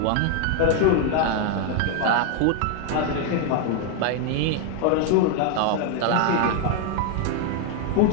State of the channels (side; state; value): both; different; correlation 0.00